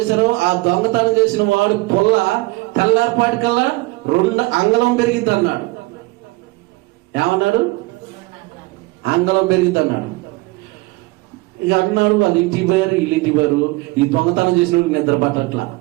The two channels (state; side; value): quieter; left; 22.4 dB